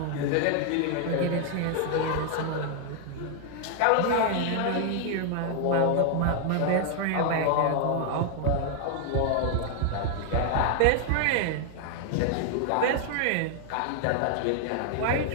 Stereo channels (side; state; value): both; different; correlation 0.00